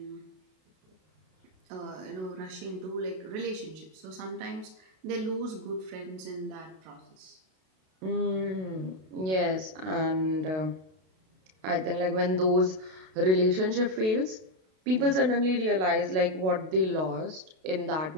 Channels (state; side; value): late; left; 32 ms